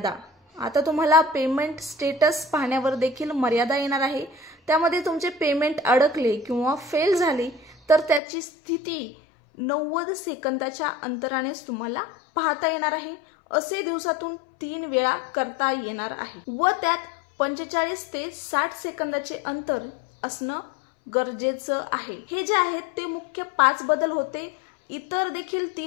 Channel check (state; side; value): drops out; right; at 8.2 s